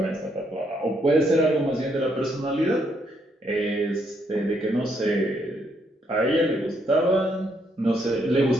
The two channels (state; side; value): normal; both; correlation 0.74